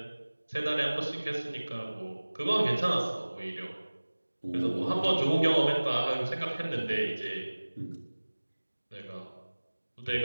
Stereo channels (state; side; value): inverted; both; correlation -1.00